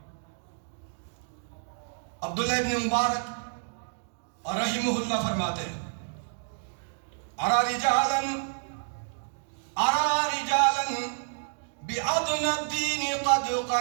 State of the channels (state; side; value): silent; left; digital silence